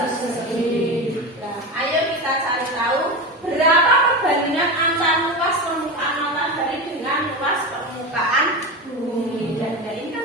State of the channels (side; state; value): both; normal; correlation 0.22